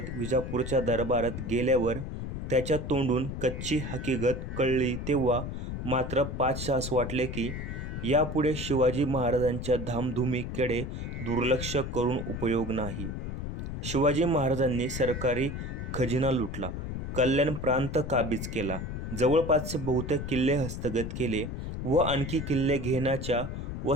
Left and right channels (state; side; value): noise; left; rumble, 5 dB below the sound